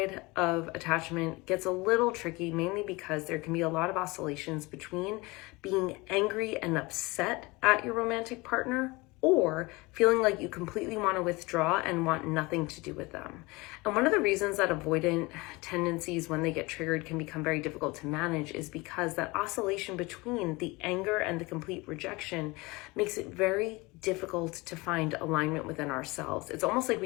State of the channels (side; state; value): right; quieter; 23.9 dB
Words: of attachment gets a little tricky, mainly because there can be a lot of oscillations between being angry and upset at your romantic partner or feeling like you completely want to withdraw and want nothing to do with them. And one of the reasons that avoidant tendencies, when they get triggered, can become very difficult to manage is because that oscillation between the anger and the complete rejection makes it very difficult to find alignment within ourselves. It's almost like